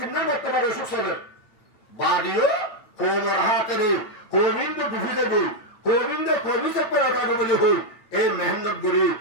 বর্তমানে অসুখ চলে বাড়িও কোমর হাতেরে কোবিন্দ ডুবি দেবে কোবিন্দ কবি চেপে রাখাবে বলে হই এই মেহনত করি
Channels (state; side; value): late; right; 8.7 ms